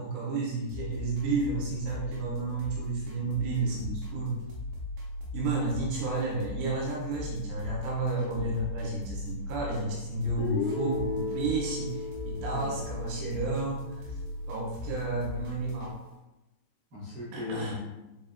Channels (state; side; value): late; left; 14 ms